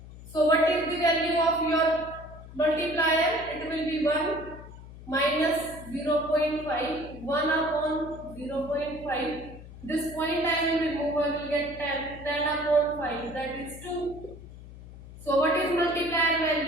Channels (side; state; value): left; noise; hum, 16 dB below the sound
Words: So what is the value of your multiplier? It will be 1 minus 0.5, 1 upon 0.5. This point I will remove, I will get 10, 10 upon 5, that is 2. So what is multiplier